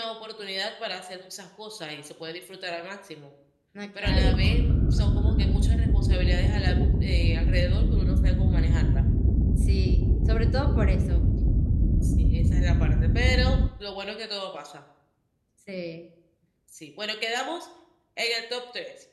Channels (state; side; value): identical; both; correlation 1.00